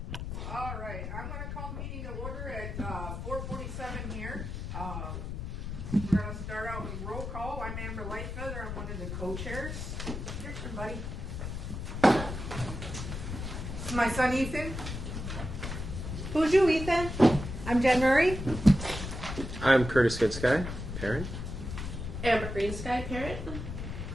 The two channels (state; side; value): noise; left; rumble, 6 dB below the sound